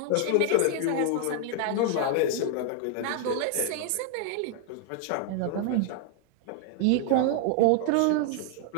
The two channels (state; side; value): different; both; correlation 0.00